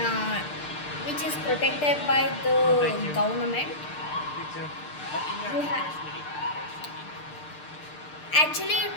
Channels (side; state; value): right; late; 6.7 ms